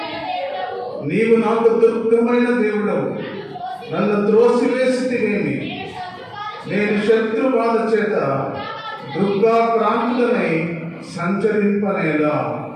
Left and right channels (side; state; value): both; identical; correlation 1.00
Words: నీవు నాకు దుర్గమైన దేవుడవు, నన్ను త్రోసివేసితివేమి, నేను శత్రు బాధ చేత దుర్గా ప్రాంతులనై సంచరింపనేలా.